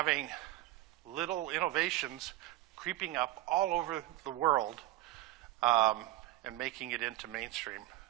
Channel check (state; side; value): quieter; left; 16.6 dB